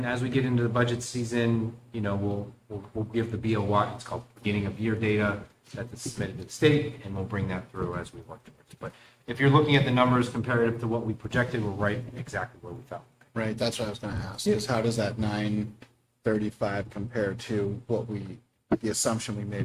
as we get into the budget season, you know, we'll give the BOY, it's called beginning of year data, that's submitted to the state, and we'll bring that through as we work towards. But if you're looking at the numbers comparative to what we projected, we're right exactly where we felt. Right, that's what I was gonna ask, is how does that 935 compare to what the assumption we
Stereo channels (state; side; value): identical; both; correlation 1.00